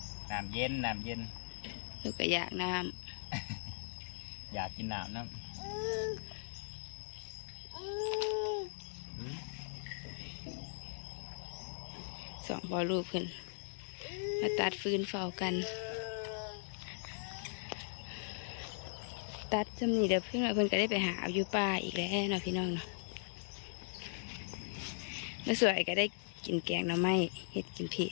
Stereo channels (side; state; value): right; silent; digital silence